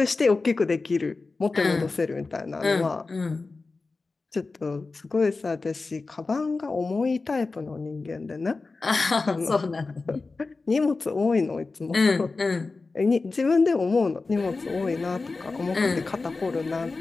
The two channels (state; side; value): quieter; right; 3.8 dB